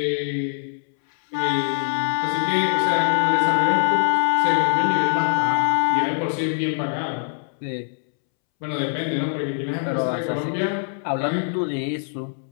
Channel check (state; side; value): silent; right; 64 dB below the other